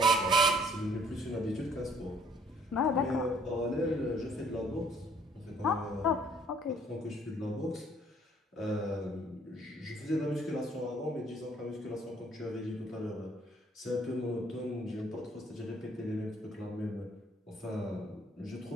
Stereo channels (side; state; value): both; normal; correlation 0.60